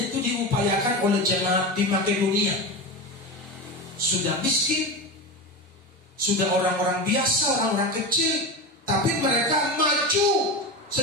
itu diupayakan oleh jemaat di Makedonia. Sudah miskin, sudah orang-orang biasa, orang-orang kecil, tapi mereka maju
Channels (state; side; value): normal; both; correlation 0.22